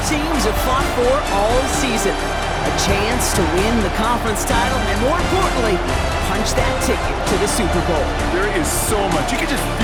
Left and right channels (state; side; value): identical; both; correlation 1.00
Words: teams have fought for all season. A chance to win the conference title, and more importantly, punch that ticket to the Super Bowl. There is so much. You can just